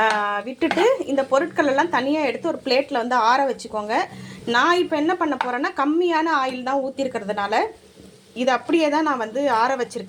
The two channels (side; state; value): both; identical; correlation 1.00